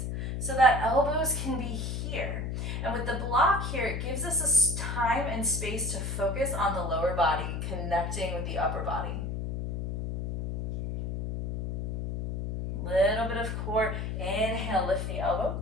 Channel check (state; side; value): noise; left; hum, 3 dB below the sound